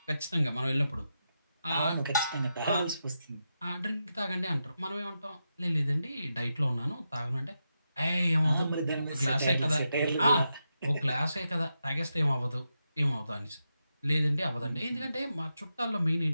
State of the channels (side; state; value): both; inverted; correlation -0.87